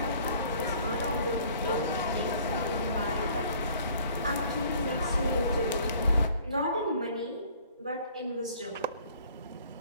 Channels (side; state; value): both; inverted; correlation -0.55